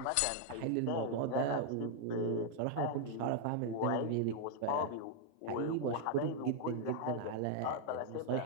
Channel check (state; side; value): different; both; correlation 0.00